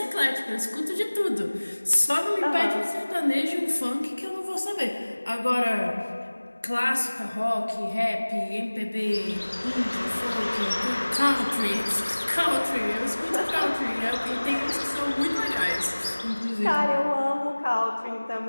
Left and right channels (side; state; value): both; inverted; correlation -1.00